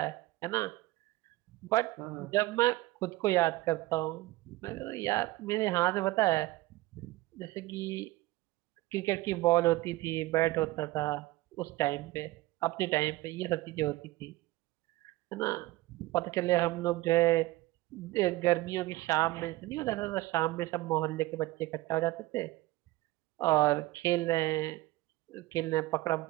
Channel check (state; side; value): quieter; left; 18.5 dB